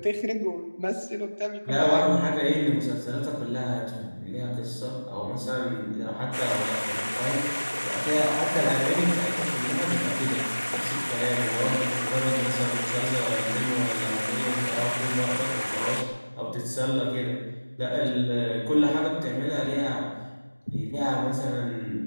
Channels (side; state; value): both; inverted; correlation -1.00